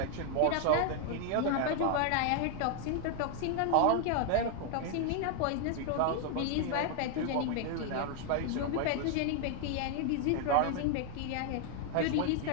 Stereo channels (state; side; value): different; both; correlation 0.00